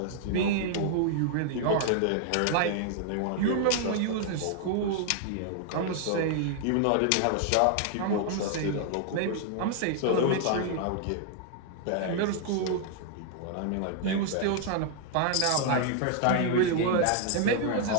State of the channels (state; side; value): different; both; correlation 0.00